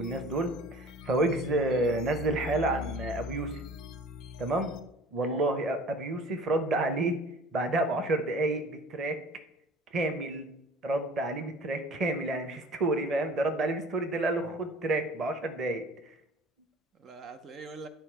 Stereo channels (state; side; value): normal; both; correlation 0.45